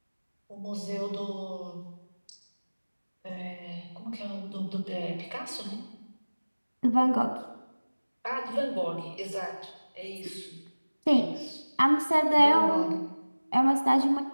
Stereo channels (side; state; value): both; inverted; correlation -1.00